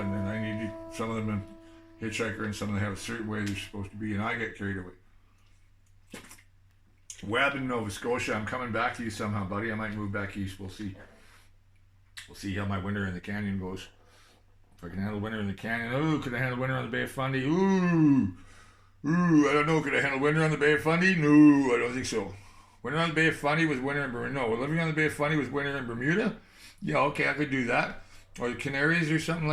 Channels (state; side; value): identical; both; correlation 1.00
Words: and I need some of them in Hitchhiker, and some of them have a certain way they're supposed to be, and I get carried away. Webb in Nova Scotia, I'm coming back to you somehow, buddy. I might move back east. We'll see. We'll see how my winter in the canyon goes. If I can handle winter in the canyon. Ooh, could I handle winter on the Bay of Fundy? Ooh, I don't know. Could I handle winter on the Bay of Fundy? No, I don't think so. Winter on the Bay of Fundy was winter in Bermuda. No, living on the Bay of Fundy was winter in Bermuda. Yeah, okay, I could do that. Or the Canaries or something